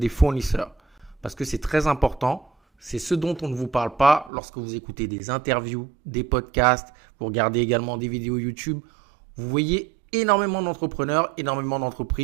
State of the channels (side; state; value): left; drops out; at 4.3 s